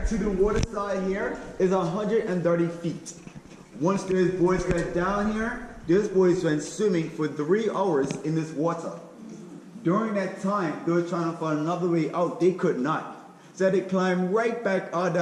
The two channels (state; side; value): identical; both; correlation 1.00